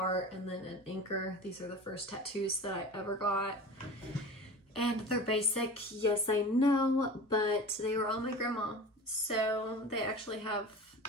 and then an anchor. These are the first tattoos that I ever got. And they're basic, yes I know, but they were on my grandma. So they actually have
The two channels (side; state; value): both; normal; correlation 0.35